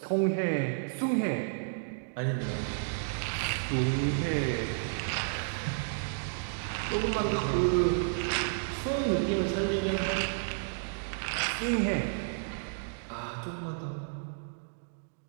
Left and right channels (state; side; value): silent; left; digital silence